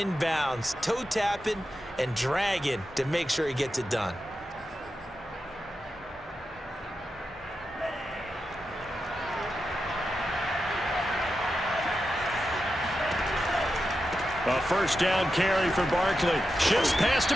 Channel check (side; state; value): both; normal; correlation 0.89